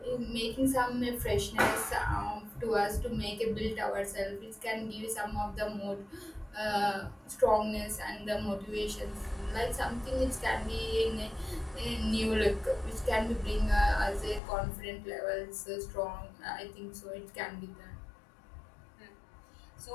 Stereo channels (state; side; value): drops out; right; at 14.4 s